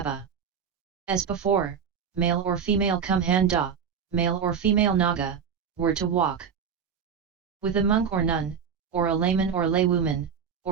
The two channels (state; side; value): quieter; left; 7.1 dB